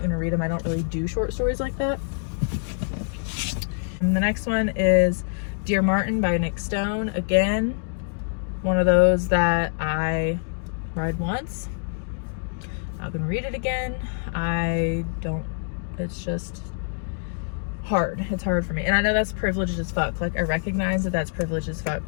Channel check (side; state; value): right; silent; digital silence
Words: to read them. I don't really do short stories like that. And the next one is Dear Martin by Nick Stone. Again, one of those that I read once. Not gonna read it again. It's just hard. It's hard for me. And I know that's privileged as fuck. I recognize that that's privileged as fuck,